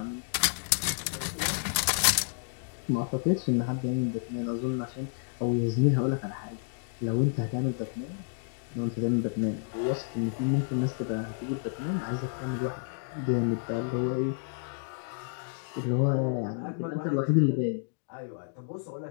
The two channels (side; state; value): right; silent; digital silence